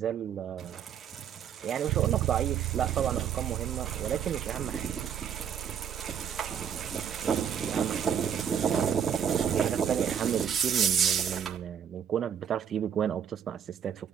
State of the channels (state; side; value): quieter; left; 8.3 dB